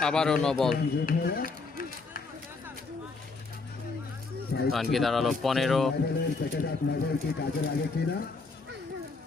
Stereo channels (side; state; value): right; quieter; 4.0 dB